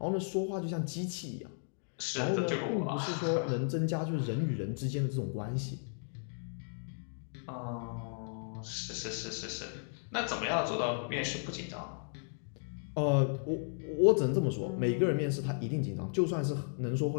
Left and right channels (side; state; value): right; silent; digital silence